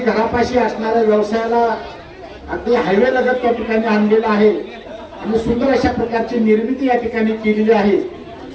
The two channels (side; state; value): both; identical; correlation 1.00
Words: असणाऱ्या व्यवसायाला अगदी हायवे लगत त्या ठिकाणी आणलेला आहे आणि सुंदर अशा प्रकारची निर्मिती या ठिकाणी केलेली आहे.